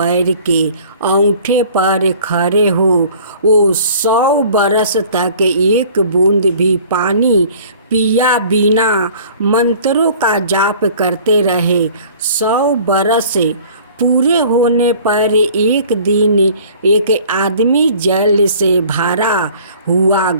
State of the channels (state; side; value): inverted; both; correlation -0.50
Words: के अंगूठे पर खड़े हो वो 100 बरस तक एक बूंद भी पानी पिया बिना मंत्रों का जाप करते रहे। 100 बरस पूरे होने पर एक दिन एक आदमी जल से भरा हुआ